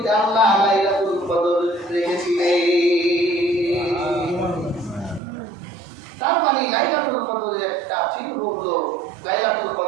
আল্লাহ লাইলাতুল কদর রেখেছিলেন। তার মানে লাইলাতুল কদরের একটা চিহ্ন হলো লাইলাতুল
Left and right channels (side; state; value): left; drops out; at 5.2 s